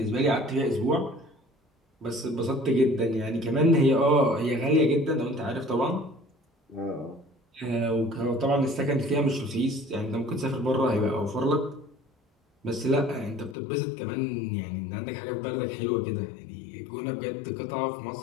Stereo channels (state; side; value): drops out; right; at 13.6 s